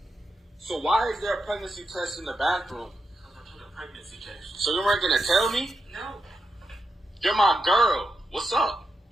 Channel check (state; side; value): normal; both; correlation 0.86